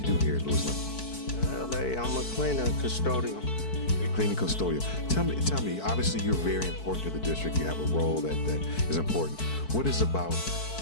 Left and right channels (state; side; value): late; right; 4.6 ms